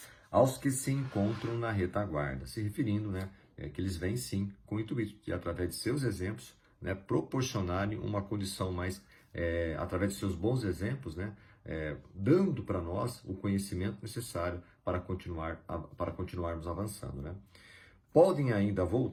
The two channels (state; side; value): identical; both; correlation 1.00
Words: aos que se encontram na retaguarda, se referindo, né, que eles vêm sim com o intuito de, através de seus exemplos, né, proporcionarem uma condição mais, através de seus bons exemplos, né, dando para nós o conhecimento necessário para continuarmos avançando, né. Podem ainda